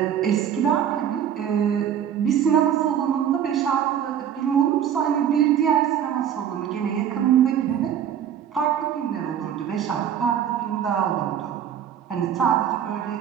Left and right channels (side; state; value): left; quieter; 9.2 dB